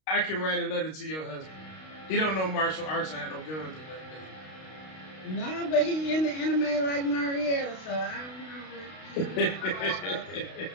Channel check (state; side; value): late; right; 32 ms